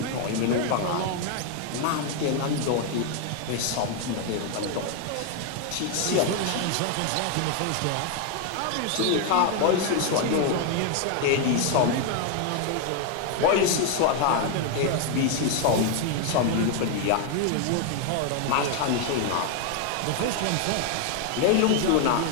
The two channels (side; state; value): both; different; correlation 0.01